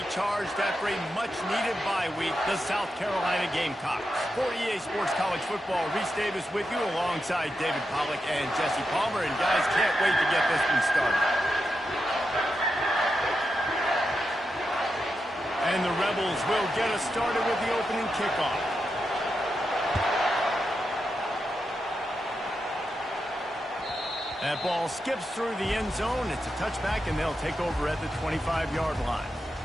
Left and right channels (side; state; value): both; normal; correlation 0.87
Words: after a much-needed bye week, the South Carolina Gamecocks. For EA Sports College Football, Reese Davis with you alongside David Pollack and Jesse Palmer. And guys, can't wait to get this one started. And the Rebels will get us started with the opening kickoff. That ball skips through the end zone. It's a touchback, and they'll take over at the 25-yard line.